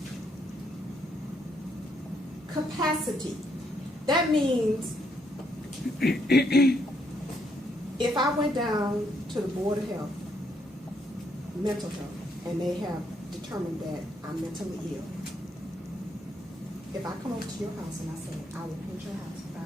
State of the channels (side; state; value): both; normal; correlation 0.74